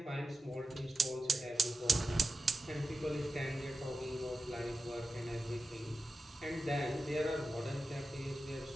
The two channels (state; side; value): normal; both; correlation 0.92